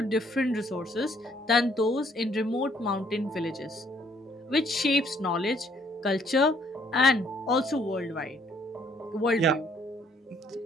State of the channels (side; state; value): both; normal; correlation 0.65